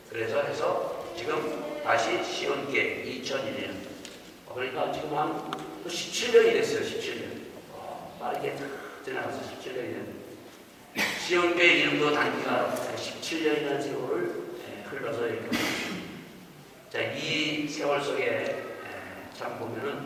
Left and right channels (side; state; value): both; identical; correlation 1.00